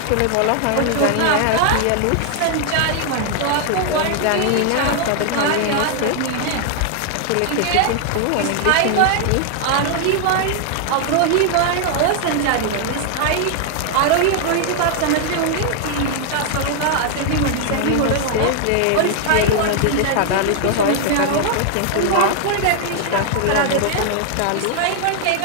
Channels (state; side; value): different; both; correlation 0.00